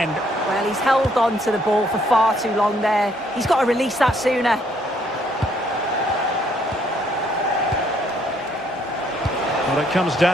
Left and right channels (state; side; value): normal; both; correlation 0.67